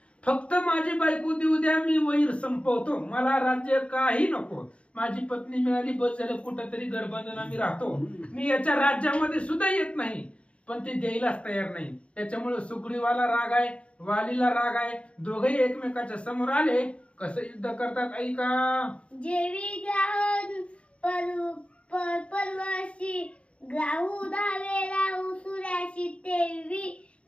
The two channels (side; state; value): right; late; 0.061 ms